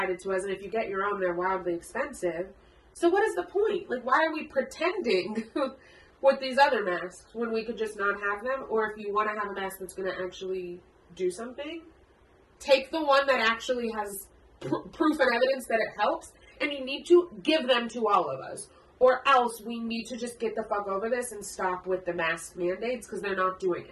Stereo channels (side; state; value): both; identical; correlation 1.00